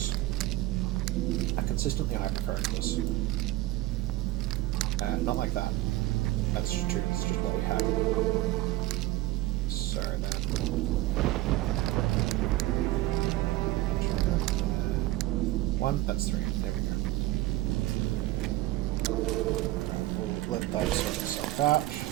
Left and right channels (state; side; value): quieter; left; 16.9 dB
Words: I consistently hypercurrent this. Not like that. That's just true. It's just what we had. So then... 1, that's 3. There we go. Alright, we'll let that sort itself out.